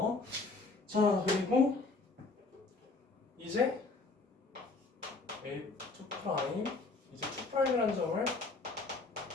자, 그리고 이제 A2' 이제 2'이라는 점을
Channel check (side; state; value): right; quieter; 3.7 dB